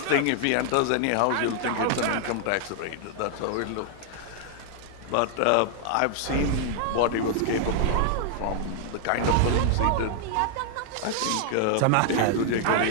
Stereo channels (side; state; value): both; different; correlation 0.00